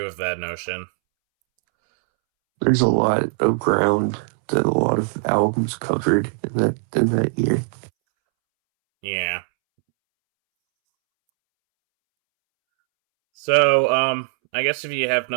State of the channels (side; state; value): left; silent; 65 dB below the other